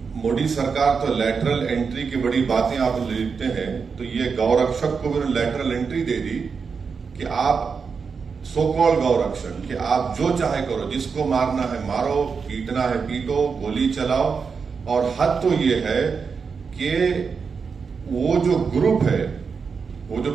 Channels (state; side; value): quieter; left; 5.5 dB